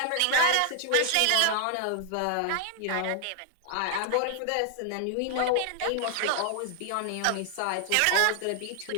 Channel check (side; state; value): both; different; correlation 0.00